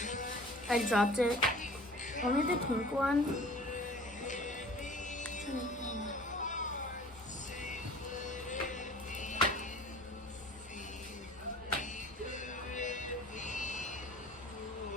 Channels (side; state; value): both; normal; correlation 0.45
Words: I dropped it. Only the pink one.